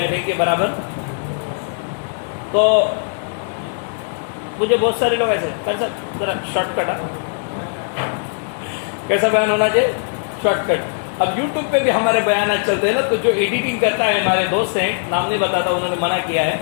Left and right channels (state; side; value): silent; right; digital silence